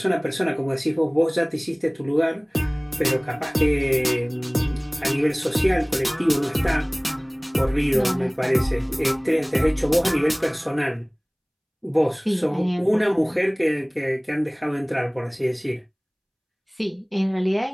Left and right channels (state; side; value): identical; both; correlation 1.00